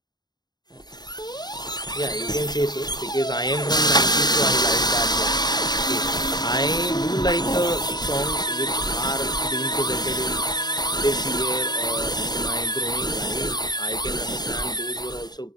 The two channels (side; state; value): right; late; 0.20 ms